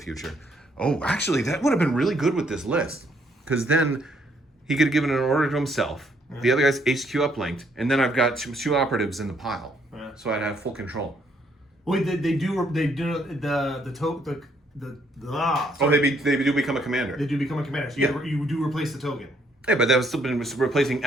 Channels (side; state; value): both; normal; correlation 0.69